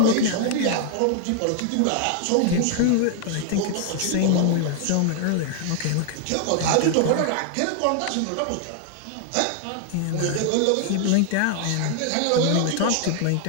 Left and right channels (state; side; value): different; both; correlation 0.00